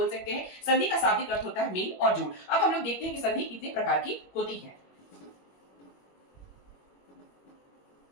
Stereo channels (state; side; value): late; right; 21 ms